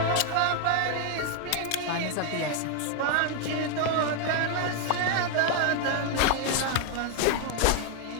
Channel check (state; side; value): different; both; correlation 0.00